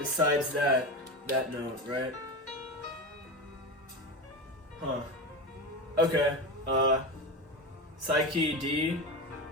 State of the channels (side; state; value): both; normal; correlation 0.21